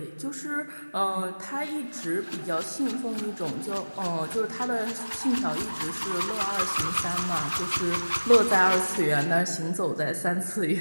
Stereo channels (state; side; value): inverted; both; correlation -1.00